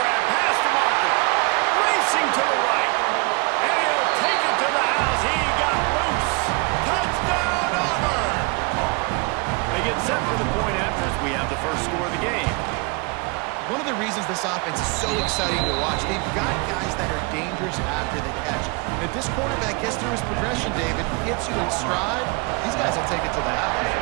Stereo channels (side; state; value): left; quieter; 29.4 dB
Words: pass to Marker. Racing to the right. And he'll take it to the house. He got loose. Touchdown, Auburn! They get set for the point after as we have the first score of the game. One of the reasons this offense is so exciting to watch, they've got guys that are dangerous after the catch. And if this quarterback gets through his progression, David, hits you in stride, these guys will take it to the house.